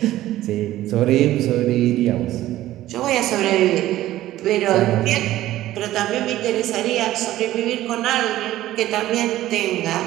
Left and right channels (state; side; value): quieter; left; 14.7 dB